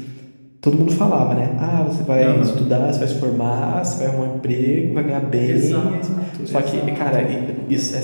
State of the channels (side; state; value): both; inverted; correlation -1.00